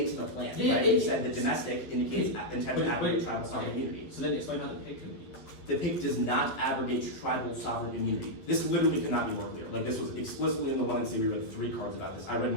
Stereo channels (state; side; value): late; right; 11 ms